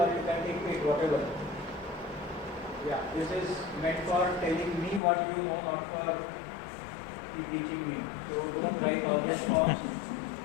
you can take it whatever. Yeah, this is meant for telling me what you know, not for teaching me. So don't write all those forms.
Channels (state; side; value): drops out; right; at 5.0 s